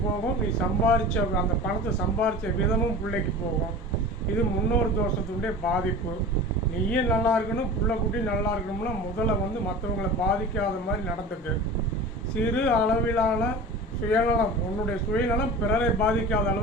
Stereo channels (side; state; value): both; normal; correlation 0.35